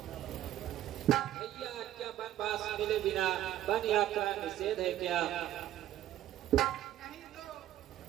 भैया क्या बनवास मिले बिना वन यात्रा निषेध है क्या?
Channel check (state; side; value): quieter; left; 12.8 dB